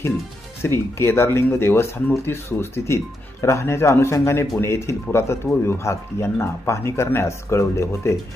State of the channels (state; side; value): normal; both; correlation 0.83